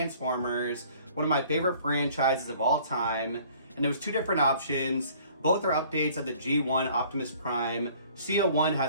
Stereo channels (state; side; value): inverted; both; correlation -0.54